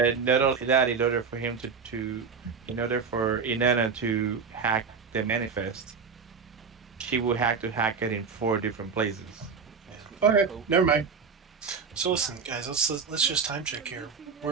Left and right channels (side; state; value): left; quieter; 5.6 dB